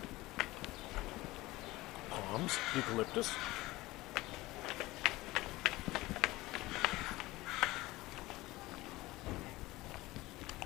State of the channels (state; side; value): quieter; right; 19.2 dB